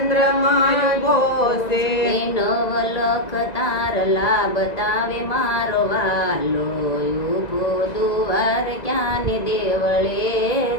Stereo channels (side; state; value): right; late; 1.9 ms